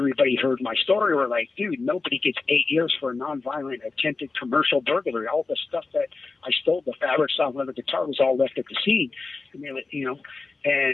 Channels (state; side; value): quieter; right; 3.9 dB